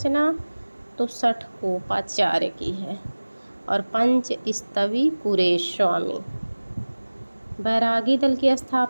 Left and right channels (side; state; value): both; inverted; correlation -1.00